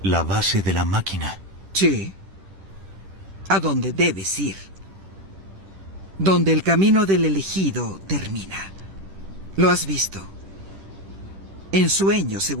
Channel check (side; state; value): left; late; 10 ms